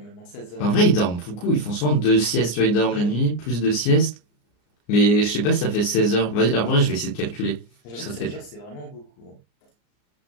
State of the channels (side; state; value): right; late; 34 ms